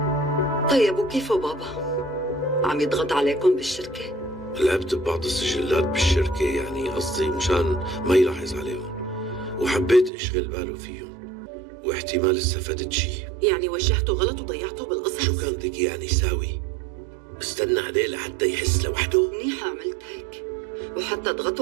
طيب وكيفه بابا؟ عم يضغط عليكم بالشركة؟ لعبت ببعض السجلات بالشركة، يعني قصدي مشان ما يلاحظ عليهم، وحبيت اشغل باله فيهم، واحتمال استفدت شيء. يعني وجهته غلط وضيعته بالقصص؟ شو كان بدك يعني يساوي؟ استنى عليه لحتى يحس لوحده؟ منيحة عملت هيك، وحتى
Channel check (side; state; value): left; drops out; at 10.1 s